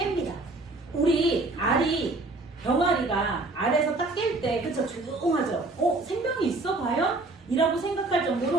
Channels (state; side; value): quieter; left; 3.2 dB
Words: 우리 병아리가 알에서 딱 깰 때, 그쵸? 조용하죠? 생명이 있어? 과연? 이라고 생각할